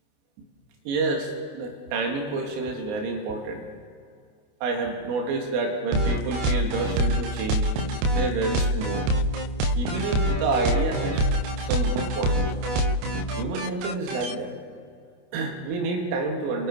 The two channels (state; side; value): late; left; 28 ms